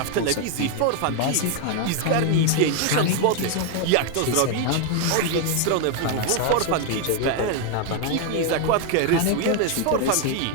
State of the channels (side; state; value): both; different; correlation 0.01